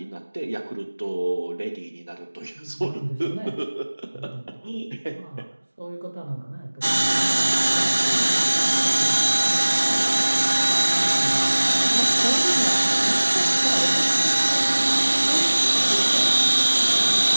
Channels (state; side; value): inverted; both; correlation -1.00